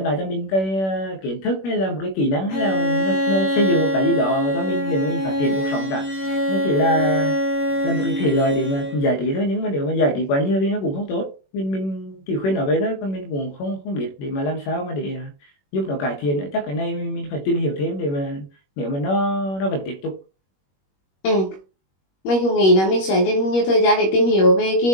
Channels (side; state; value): right; late; 21 ms